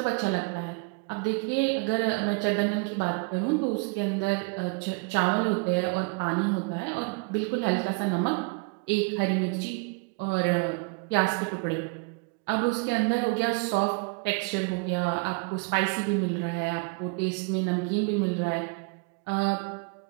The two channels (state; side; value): quieter; left; 31.3 dB